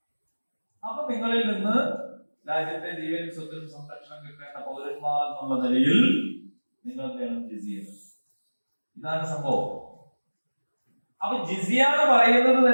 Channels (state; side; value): inverted; both; correlation -1.00